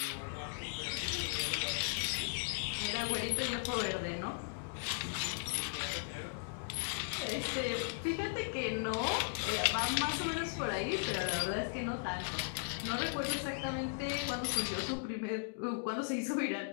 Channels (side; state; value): right; silent; digital silence